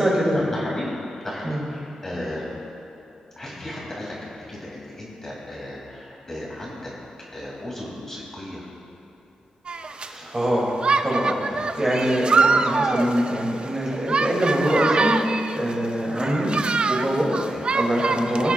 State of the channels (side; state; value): both; normal; correlation 0.88